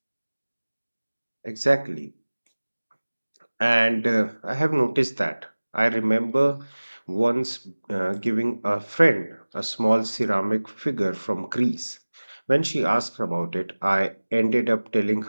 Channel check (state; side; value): inverted; both; correlation -1.00